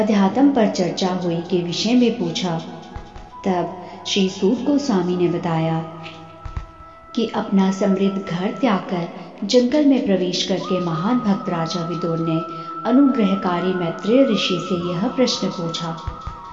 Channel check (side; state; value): both; identical; correlation 1.00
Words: पर चर्चा हुई के विषय में पूछा, तब श्री सूत गोस्वामी ने बताया कि अपना समृद्ध घर त्याग कर जंगल में प्रवेश करके महान भक्त राजा विदुर ने अनुग्रहकारी मैत्रेय ऋषि से यह प्रश्न पूछा,